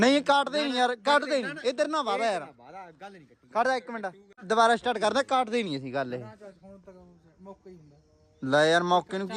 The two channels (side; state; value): both; identical; correlation 1.00